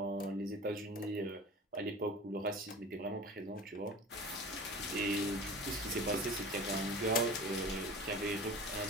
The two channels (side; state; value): both; normal; correlation 0.37